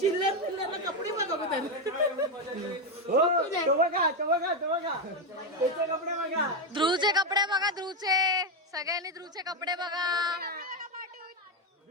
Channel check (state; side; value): normal; both; correlation 0.08